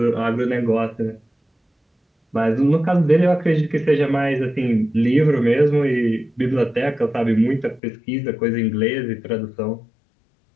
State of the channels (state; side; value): drops out; right; at 7.8 s